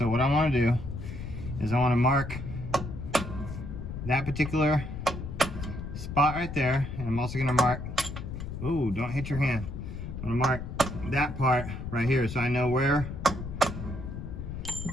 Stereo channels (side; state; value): left; noise; rumble, 7 dB below the sound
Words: what I want to do is I want to mark that particular spot right there, and I'm also gonna mark, ooh, don't hit your hand. I'm gonna mark that part right here, so I know where,